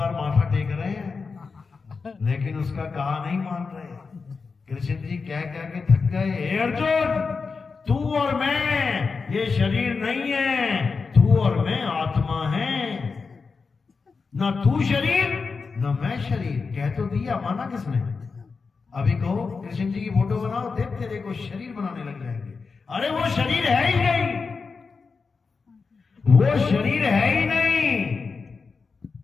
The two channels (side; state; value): right; quieter; 4.8 dB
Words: माथा टेक रहे हैं, लेकिन उसका कहा नहीं मान रहे। कृष्ण जी कह कह के थक गए, हे अर्जुन, तू और मैं ये शरीर नहीं है, तू और मैं आत्मा है। ना तू शरीर ना मैं शरीर, कह तो दिया, माना किसने? अभी कहो कृष्ण जी की फोटो बनाओ, देख तेरे को शरीर बनाने लग जाएंगे। अरे वो शरीर है ही नहीं, वो शरीर है ही नहीं।